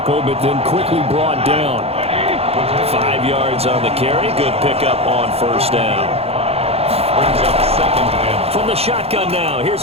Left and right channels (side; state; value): left; late; 0.29 ms